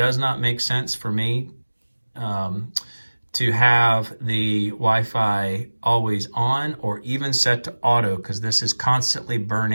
not make sense for me to have the Wi-Fi always on or even set to auto, because this is constantly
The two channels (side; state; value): both; inverted; correlation -1.00